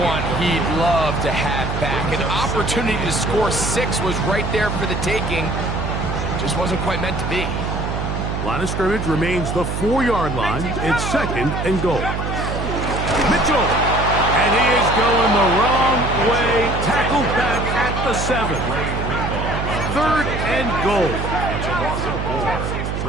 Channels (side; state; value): right; noise; hum, 3 dB below the sound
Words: he'd love to have back. An opportunity to score 6 was right there for the taking. Just wasn't quite meant to be. Line of scrimmage remains the 4-yard line. It's 2nd and goal. Mitchell. And he is going the wrong way. Tackled back at the 7. 3rd and goal. It's a loss of